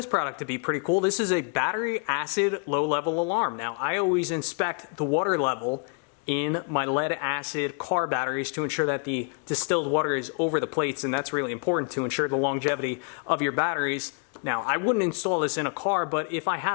product to be pretty cool. This is a battery acid low level alarm. Now I always inspect the water level in my lead acid car batteries to ensure that the distilled water is over the plates, and that's really important to ensure the longevity of your batteries. Now, I wouldn't install this in a car, but if I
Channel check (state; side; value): quieter; right; 39.5 dB